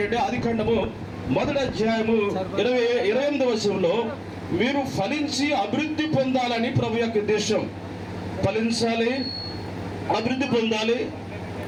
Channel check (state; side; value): identical; both; correlation 1.00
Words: ఆదికాండము 1వ అధ్యాయము 28వ వచనంలో మీరు ఫలించి అభివృద్ధి పొందాలని ప్రభు యొక్క ఉద్దేశం. ఫలించాలి, అభివృద్ధి పొందాలి.